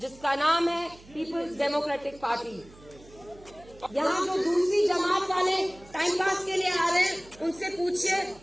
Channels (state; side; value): noise; right; hum, 23 dB below the sound